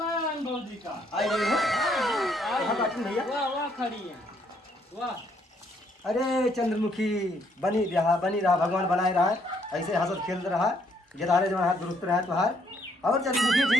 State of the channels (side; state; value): both; normal; correlation 0.69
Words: अनुभव जी का आई गई हो हाँ बाटन भैया। वाह वाह खड़ी है वाह। अरे चंद्रमुखी बनी रहा भगवान बनाए रहा है ऐसे हंसत खेल रहा है गिदारे जो हाथ दुरुस्त रहा तुहार और चंद्रमुखी